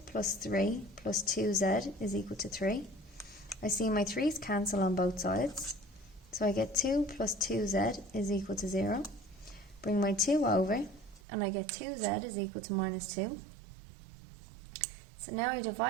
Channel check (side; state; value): left; drops out; at 11.2 s